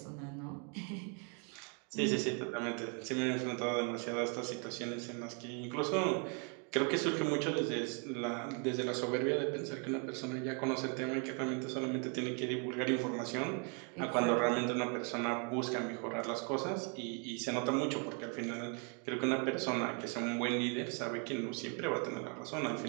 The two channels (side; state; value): left; quieter; 36.8 dB